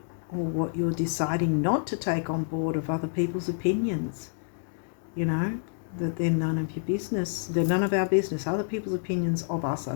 or what you're deciding not to take on board of other people's opinions. You know, that they're none of your business. They're none of our business. Other people's opinions of us are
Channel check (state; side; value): silent; right; digital silence